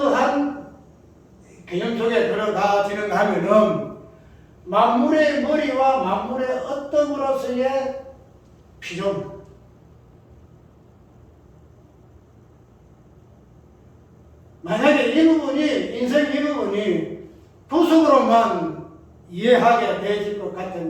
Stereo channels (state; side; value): identical; both; correlation 1.00